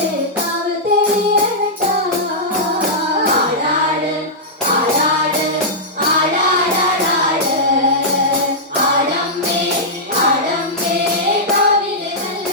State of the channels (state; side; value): normal; both; correlation -0.11